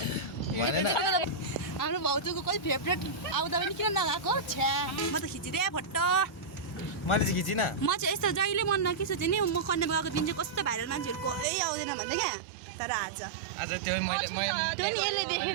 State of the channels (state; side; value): drops out; left; at 11.5 s